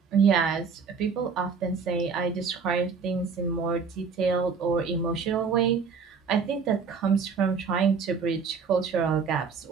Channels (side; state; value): left; quieter; 5.6 dB